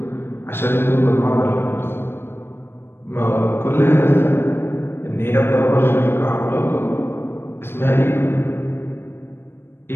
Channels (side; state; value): right; late; 0.11 ms